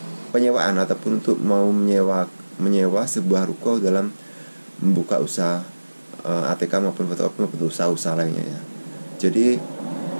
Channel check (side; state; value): both; inverted; correlation -1.00